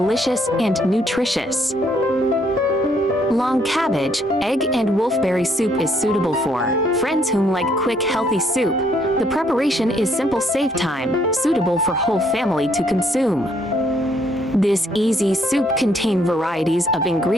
and nutritious. Long cabbage, egg, and wolfberry soup is suitable for friends who like quick, healthy soup. The preparation is simple, save time, suitable for whole family to consume. This easy soup contains varieties of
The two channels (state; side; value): normal; both; correlation 0.68